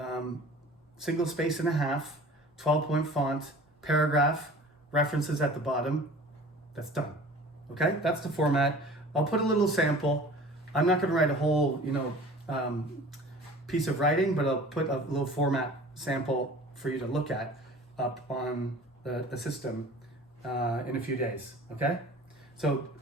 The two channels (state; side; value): normal; both; correlation 0.44